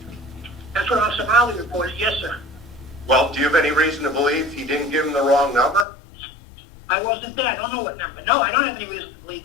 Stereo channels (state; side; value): drops out; right; at 5.9 s